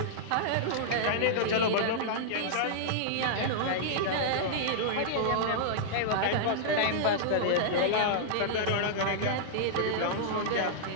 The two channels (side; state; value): both; different; correlation -0.02